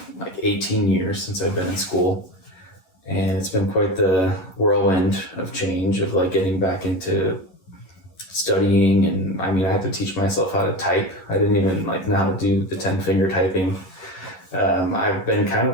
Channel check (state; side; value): late; right; 11 ms